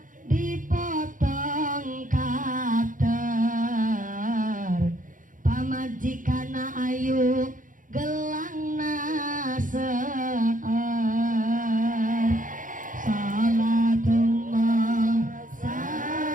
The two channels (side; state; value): left; late; 0.38 ms